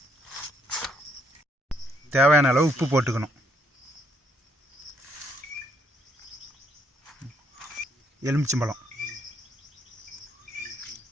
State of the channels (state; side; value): normal; both; correlation 0.71